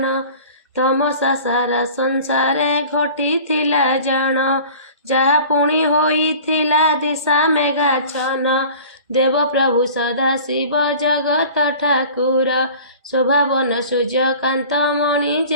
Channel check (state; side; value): inverted; both; correlation -0.44